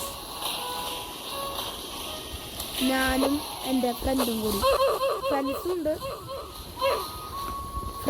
ഞാനും എൻ്റെ ഫ്രണ്ടും കൂടി. ഫ്രണ്ട്സുണ്ട്,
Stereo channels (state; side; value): identical; both; correlation 1.00